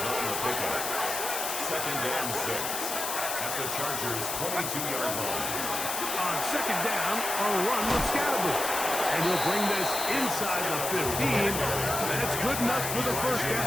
on the pickup. Second and 6 at the Chargers' 22-yard line. On second down, a run with Scatterboot. And he'll bring this inside the 15. That's good enough for the first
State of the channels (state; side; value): noise; left; hiss, 3 dB below the sound